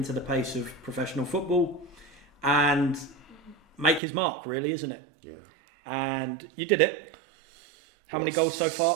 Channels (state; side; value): drops out; left; at 4.0 s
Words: the pace of professional football and make his mark, really, isn't it? Yeah. And you did it. How many goals so far?